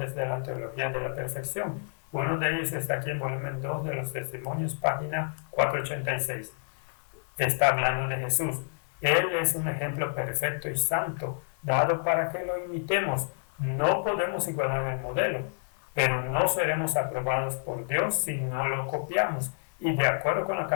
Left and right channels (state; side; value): silent; right; 59 dB below the other